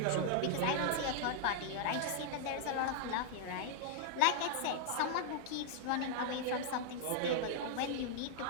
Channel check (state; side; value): different; both; correlation 0.00